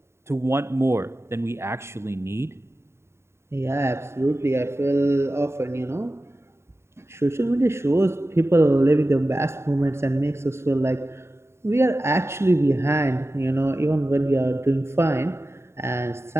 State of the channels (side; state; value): left; late; 0.13 ms